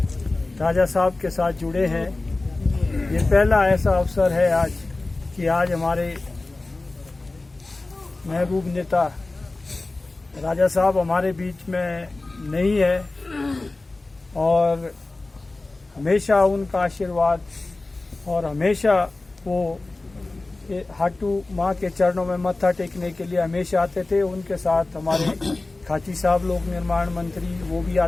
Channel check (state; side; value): quieter; right; 3.2 dB